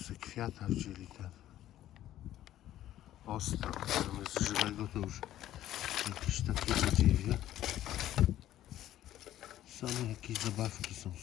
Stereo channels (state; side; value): quieter; right; 13.0 dB